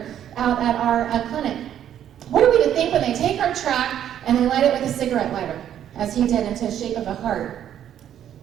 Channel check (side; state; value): left; quieter; 10.3 dB